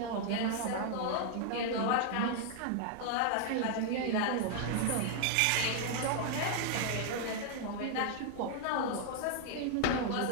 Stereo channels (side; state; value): both; different; correlation 0.00